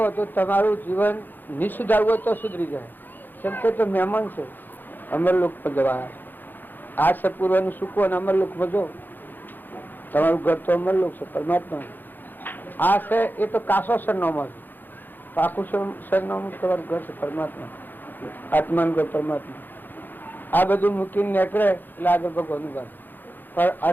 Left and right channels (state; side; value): late; right; 0.089 ms